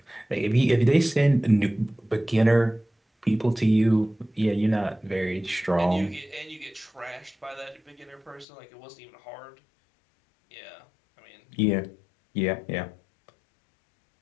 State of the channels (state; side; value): drops out; right; at 8.5 s